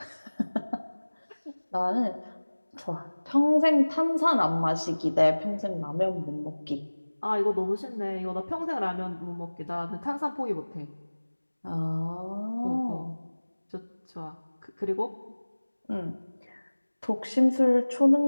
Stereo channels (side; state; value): both; inverted; correlation -1.00